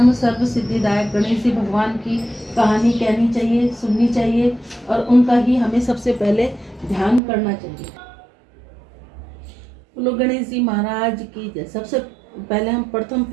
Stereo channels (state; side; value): drops out; left; at 7.2 s